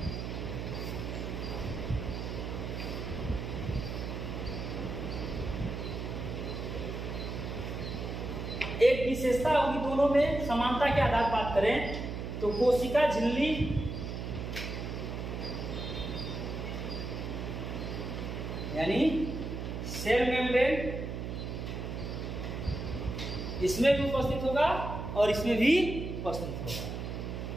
एक विशेषता होगी दोनों में, समानता के आधार पर बात करें तो कोशिका झिल्ली यानी सेल मेम्ब्रेन इसमें भी उपस्थित होगा और इसमें भी उपस्थित होगा।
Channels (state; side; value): noise; right; hum, 5 dB below the sound